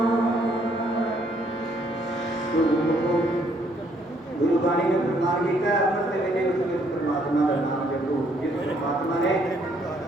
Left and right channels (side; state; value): both; normal; correlation 0.67